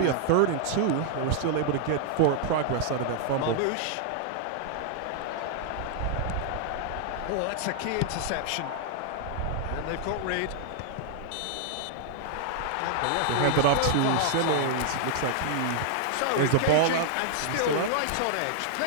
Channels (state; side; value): different; both; correlation -0.01